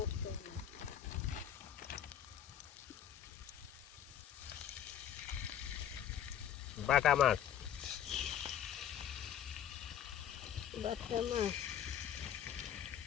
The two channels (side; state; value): right; quieter; 9.8 dB